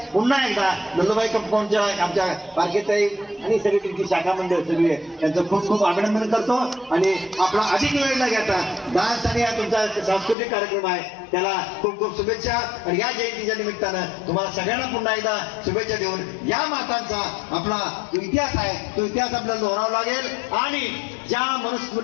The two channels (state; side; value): drops out; right; at 10.4 s